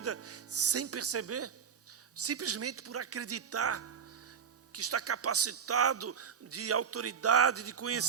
sem perceber, simplesmente por acreditar que está capacitado de autoridade, de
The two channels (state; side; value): quieter; left; 7.1 dB